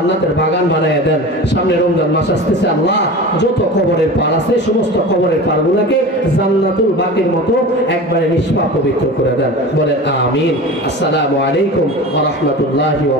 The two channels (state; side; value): normal; both; correlation 0.33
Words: বাগান বানায় দেন। সামনে রমজান মাস আসতেছে, আল্লাহ যত কবরের পার আছে সমস্ত কবরের পারগুলোকে জান্নাতুল বাকির মতো একবারে নিষ্পাপ পবিত্র করে দেন, বলেন আমিন। আসসালামু আলাইকুম ওয়া রাহমাতুল্লাহি ওয়া